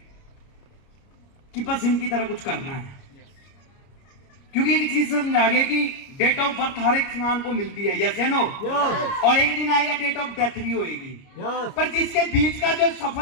कि बस इनकी तरह कुछ करना है। क्योंकि एक चीज समझा गया कि डेट ऑफ बर्थ हर एक इंसान को मिलती है, यस या नो, और एक दिन आएगा डेट ऑफ डेथ भी होएगी। पर जिसके बीच का जो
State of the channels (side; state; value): right; late; 29 ms